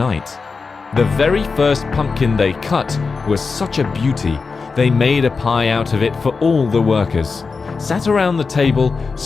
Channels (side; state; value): right; quieter; 4.6 dB